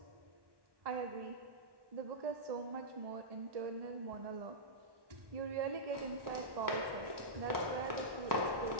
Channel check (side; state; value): left; late; 1.1 ms